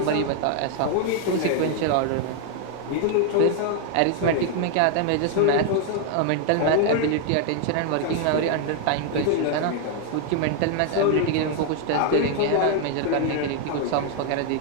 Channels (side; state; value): both; different; correlation 0.00